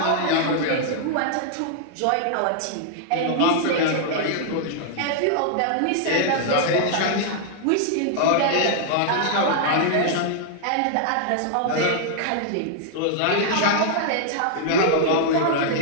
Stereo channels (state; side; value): different; both; correlation -0.01